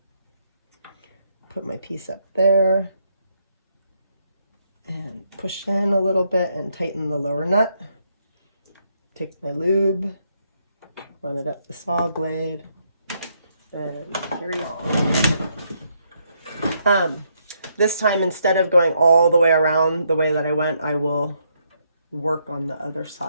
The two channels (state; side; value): inverted; both; correlation -0.75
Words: put my piece up there, and push in a little bit and tighten the lower nut. Take my lube, run it up the saw blade, and carry on. This time, instead of going all the way around the way that I went, I will work on the other